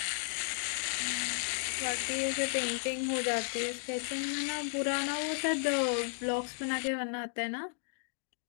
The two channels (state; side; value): silent; right; digital silence